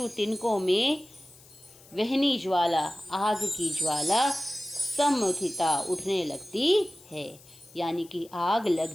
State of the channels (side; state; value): left; noise; hiss, 24 dB below the sound